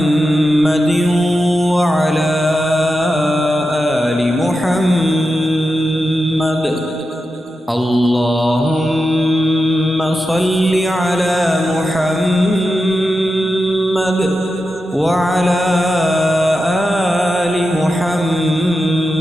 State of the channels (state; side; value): normal; both; correlation 0.90